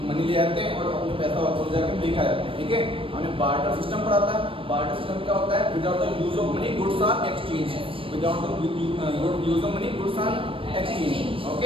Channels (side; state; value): left; late; 0.26 ms